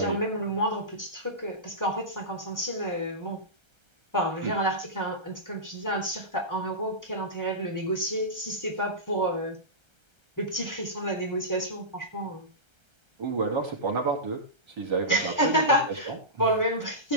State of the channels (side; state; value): left; late; 1.3 ms